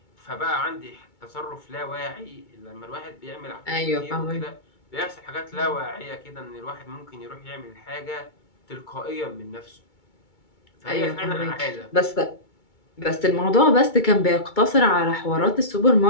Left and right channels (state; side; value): late; right; 2.2 ms